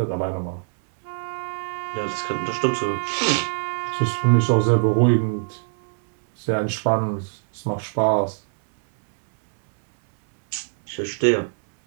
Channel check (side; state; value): left; silent; 64 dB below the other